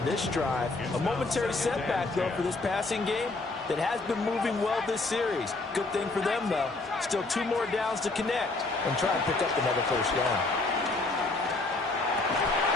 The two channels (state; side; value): quieter; right; 3.3 dB